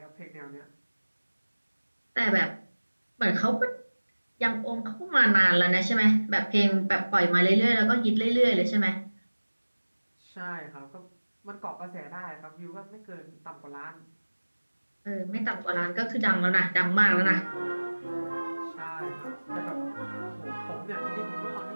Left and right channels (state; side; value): inverted; both; correlation -1.00